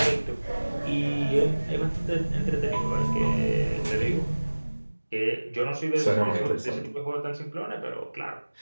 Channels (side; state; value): both; inverted; correlation -1.00